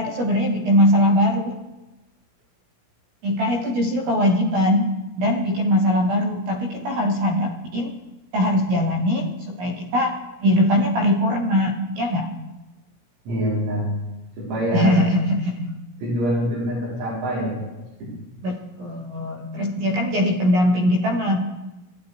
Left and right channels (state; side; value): late; left; 17 ms